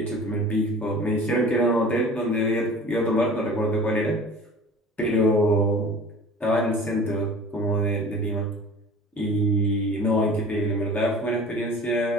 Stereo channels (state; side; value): normal; both; correlation 0.42